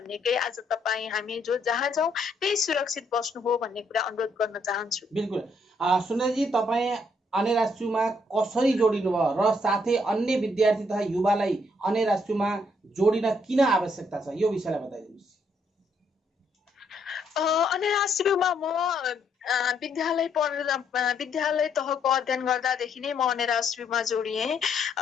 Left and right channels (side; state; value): both; normal; correlation 0.72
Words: आज तपाईँ हामी जो जहाँ जाउँ त्यही सुरक्षित बस्नु हो भन्ने कुरा अनुरोध गर्न चाहन्छु। बिल्कुल सुन्दरजी, तपाईँ अन्य राष्ट्रियमा कसरी जोडिनु भयो र साथै अन्य विद्यार्थी तथा युवालाई अन्य राष्ट्रियमा जोडिन किन आवश्यकता छ यो विषयलाई बताइदिनुहोस्। अन्य राष्ट्रियमा म विद्यालय तहको अध्ययन गर्दादेखि नै म अन्य राष्ट्रियमा जोडिएँ।